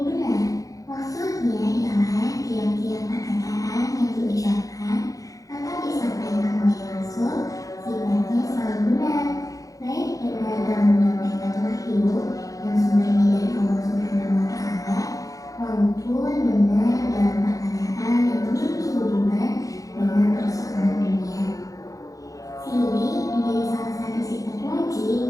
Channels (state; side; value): late; right; 0.17 ms